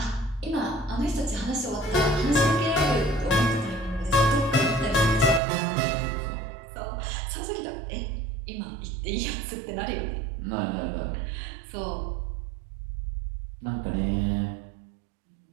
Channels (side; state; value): left; drops out; at 5.4 s